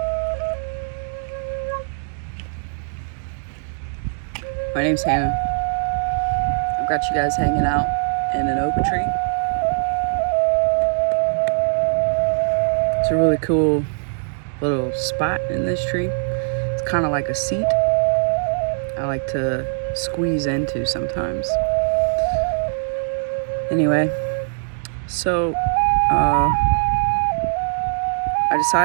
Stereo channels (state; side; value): silent; left; digital silence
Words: My name's Hannah. I've got you guys hanging out in an oak tree. It's a really cool little spot in this tree. It's kind of like a seat I like to squeeze into sometimes. Anyway, so I